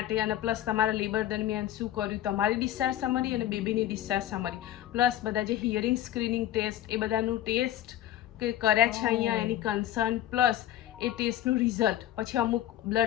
અને પ્લસ તમારા લેબર દરમિયાન શું કર્યું, તમારી ડિસ્ચાર્જ સમરી અને બેબીની ડિસ્ચાર્જ સમરી, પ્લસ બધા જે હિયરિંગ સ્ક્રીનિંગ ટેસ્ટ એ બધાનું ટેસ્ટ કે કર્યા છે અહીંયા, એની કન્સર્ન, પ્લસ એ ટેસ્ટનું રિઝલ્ટ, પછી અમુક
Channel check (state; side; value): quieter; right; 12.6 dB